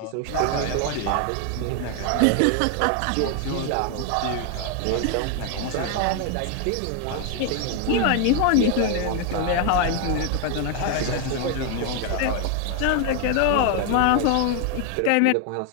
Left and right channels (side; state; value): both; different; correlation 0.01